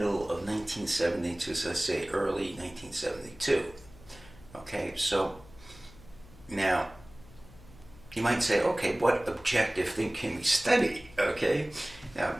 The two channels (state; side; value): noise; left; hum, 22 dB below the sound